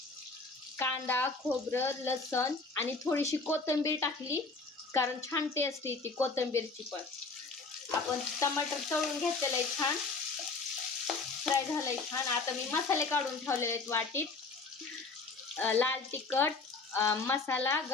कांदा, खोबरं, लसण आणि थोडीशी कोथिंबीर टाकली कारण छान टेस्ट येते कोथिंबीरची पण. आपण टमाटर तळून घेतलेलं आहे, छान फ्राय झालंय छान. आता मी मसाले काढून ठेवलेले आहेत वाटीत. लाल तिखट, मसाला,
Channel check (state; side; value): quieter; right; 4.0 dB